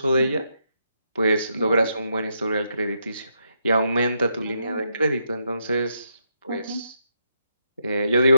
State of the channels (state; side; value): inverted; both; correlation -0.80